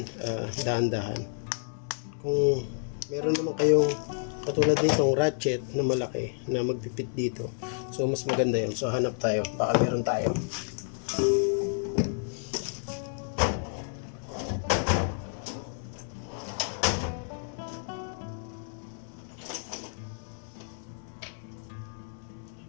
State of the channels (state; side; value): silent; right; 58 dB below the other